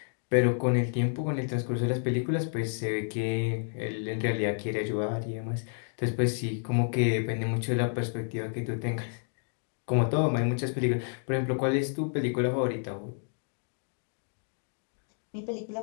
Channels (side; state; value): right; silent; digital silence